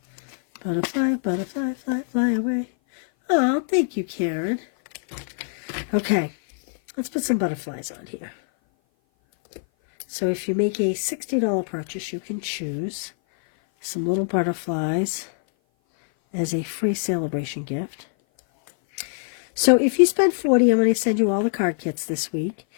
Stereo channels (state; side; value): silent; right; 57 dB below the other